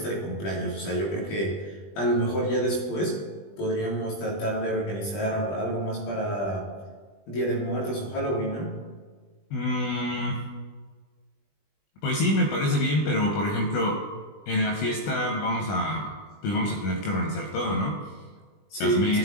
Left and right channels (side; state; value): right; late; 20 ms